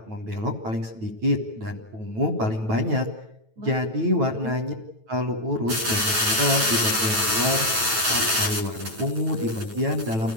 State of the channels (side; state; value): left; late; 9.1 ms